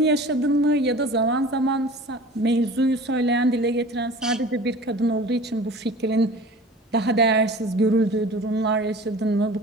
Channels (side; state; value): both; normal; correlation 0.41